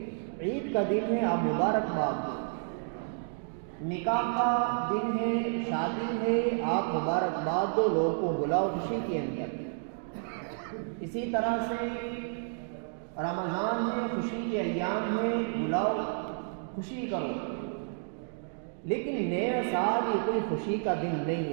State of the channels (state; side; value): silent; left; digital silence